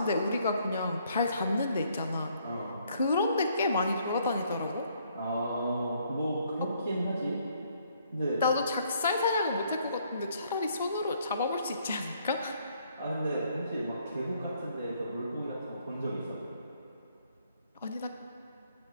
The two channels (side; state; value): both; inverted; correlation -0.68